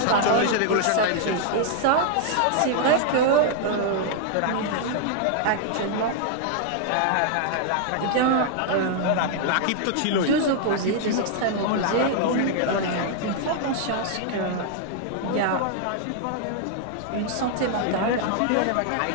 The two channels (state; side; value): different; both; correlation 0.00